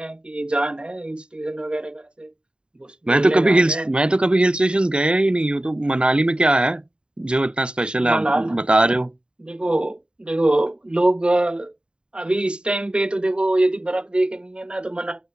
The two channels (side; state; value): left; late; 0.050 ms